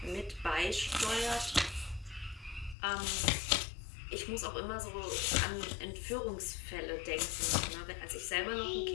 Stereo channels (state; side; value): drops out; right; at 2.8 s